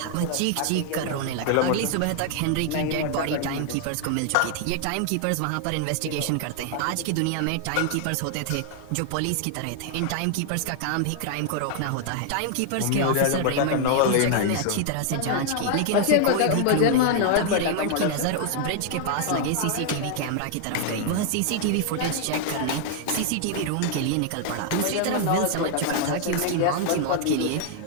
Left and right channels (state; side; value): different; both; correlation 0.00